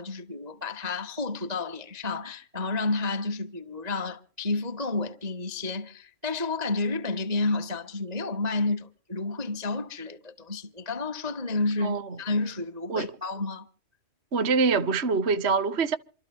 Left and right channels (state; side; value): late; left; 2.0 ms